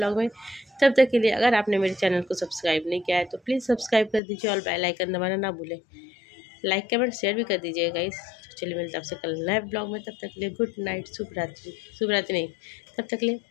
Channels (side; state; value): right; drops out; at 4.2 s